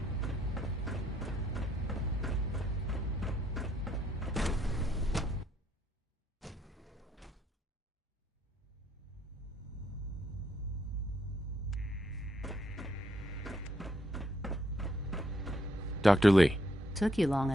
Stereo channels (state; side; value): normal; both; correlation 0.72